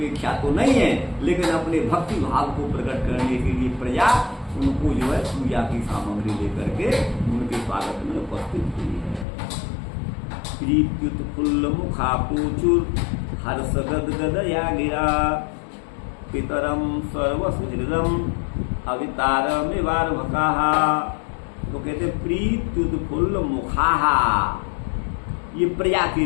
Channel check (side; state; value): right; drops out; at 9.2 s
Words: तो नहीं है, लेकिन अपने भक्ति भाव को प्रकट करने के लिए प्रजा उनको जो है पूजा की सामग्री लेकर के उनके स्वागत में उपस्थित हुई है। प्रीत्युत फुल्ल मुखापूचुर हर्ष गद गदया गिरा, पितरम सर्वसुहृदम अवितारमिवार्भकाः। तो कहते प्रीत्युत फुल्ल मुखाहा, ये प्रजा के